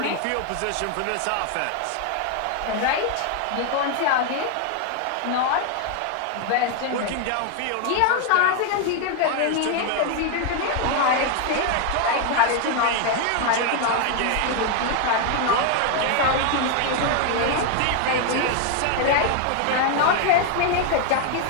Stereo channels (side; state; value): both; different; correlation 0.01